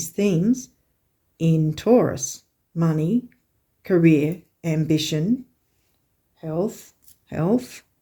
themes in Taurus. Money, career, ambition, health.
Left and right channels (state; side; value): identical; both; correlation 1.00